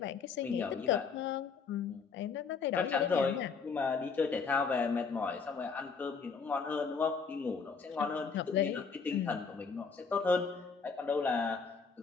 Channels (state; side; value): quieter; right; 5.4 dB